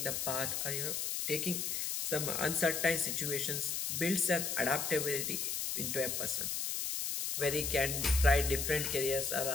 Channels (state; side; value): noise; left; hiss, 1 dB below the sound